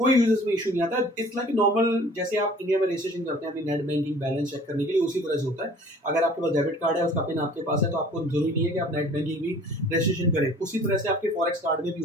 यूज़र्स में इश्यू नहीं आता। इट्स लाइक नॉर्मल, जैसे आप इंडिया में रजिस्ट्रेशन करते हैं अपनी नेट बैंकिंग बैलेंस चेक करने के लिए, उसी तरह से होता है। अगर आपके पास डेबिट कार्ड है, उसका पिन आपके पास है, तो आपको ज़रूरी नहीं है कि आप नेट बैंकिंग भी रजिस्ट्रेशन करें। उसी तरह से आपके फॉरेक्स कार्ड में भी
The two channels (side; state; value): both; normal; correlation 0.50